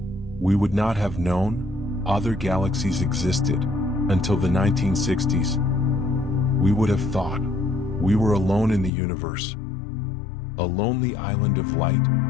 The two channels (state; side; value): drops out; right; at 8.9 s